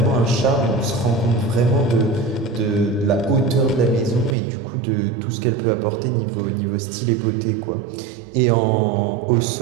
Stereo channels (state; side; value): drops out; left; at 4.4 s